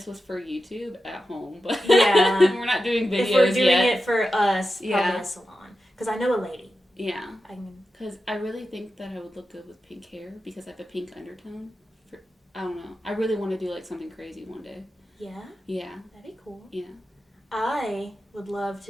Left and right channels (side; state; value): both; normal; correlation 0.91